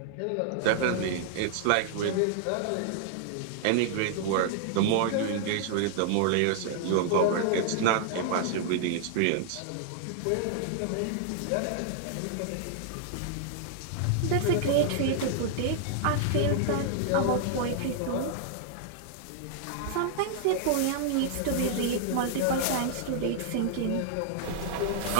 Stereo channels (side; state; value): both; different; correlation -0.01